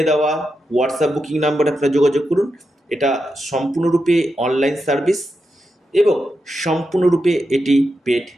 দেওয়া হোয়াটসঅ্যাপ বুকিং নাম্বারে আপনারা যোগাযোগ করুন। এটা সম্পূর্ণরূপে অনলাইন সার্ভিস এবং সম্পূর্ণরূপে এটি পেড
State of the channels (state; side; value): normal; both; correlation 0.87